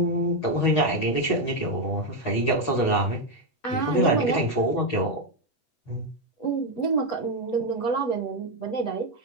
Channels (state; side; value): late; right; 8.1 ms